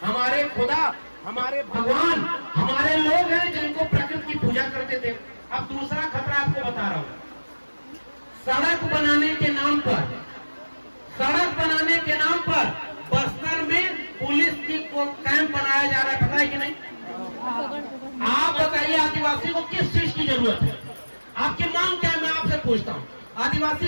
हमारे खुदा, हमारे भगवान, हमारे लोग हैं जिनको प्रकृति की पूजा करते थे। अब दूसरा खतरा आपको बता रहा हूं। सड़क बनाने के नाम पर बस्तर में पुलिस की कैंप बनाया जा रहा है, पता है कि नहीं? आप बताइए आदिवासी को किस चीज की जरूरत है? आपकी मांग क्या है, मैं आपसे पूछता हूँ। आदिवासी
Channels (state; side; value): inverted; both; correlation -1.00